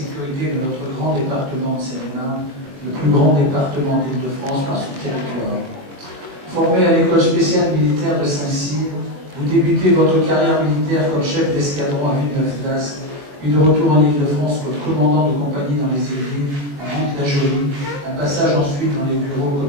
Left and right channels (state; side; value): late; left; 21 ms